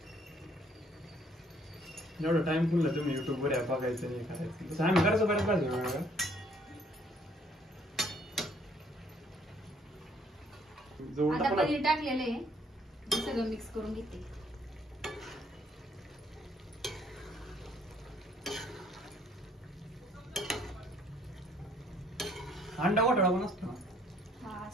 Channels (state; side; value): normal; both; correlation 0.64